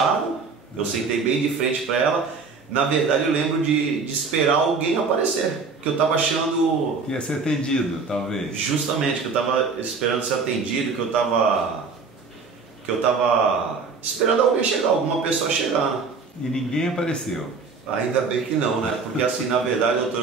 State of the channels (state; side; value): quieter; left; 4.7 dB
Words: Eu sentei bem de frente para ela. Na verdade eu lembro de esperar alguém aparecer, que eu estava achando... Que ia ser atendido, talvez. Justamente, que eu estava esperando ser atendido, que eu estava esperando alguém chegar, alguma pessoa chegar. E ninguém apareceu? Ainda bem que não, né? Porque assim, na verdade, doutor,